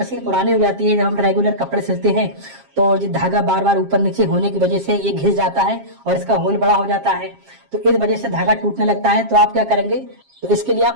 पुरानी हो जाती है, जब हम रेगुलर कपड़े सिलते हैं तो जो धागा बार बार ऊपर नीचे होने की वजह से ये घिस जाता है और इसका होल बड़ा हो जाता है, तो इस वजह से धागा टूटने लगता है। तो आप क्या करेंगे, तो इसके लिए आप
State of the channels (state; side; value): late; left; 7.5 ms